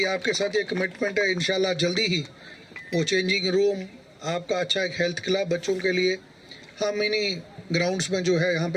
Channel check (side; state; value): both; identical; correlation 1.00